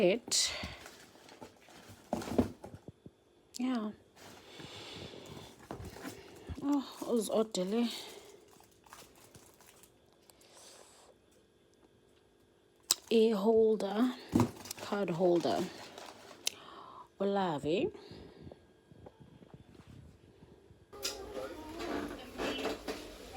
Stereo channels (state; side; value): identical; both; correlation 1.00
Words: Yeah. Oh, it was oddly. A holder, card holder. Olavi.